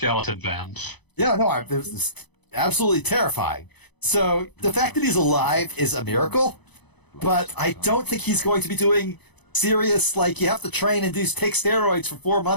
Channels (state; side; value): late; right; 0.99 ms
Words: fans. Yeah, no, it was absolutely terrifying. So the fact that he's alive is a miracle, but I don't think he's going to be doing serious, you have to train and take steroids for 4